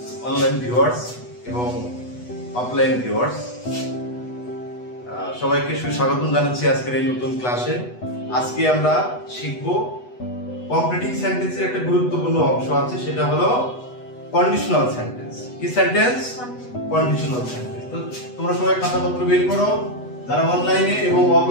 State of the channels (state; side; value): late; right; 8.1 ms